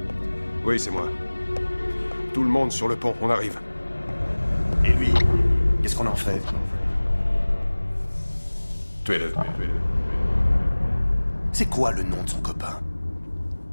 Oui, c'est moi. Tout le monde sur le pont, on arrive. Et lui, qu'est-ce qu'on en fait? Tuez-le, tuez-le. C'est quoi le nom de son copain?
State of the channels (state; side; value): inverted; both; correlation -1.00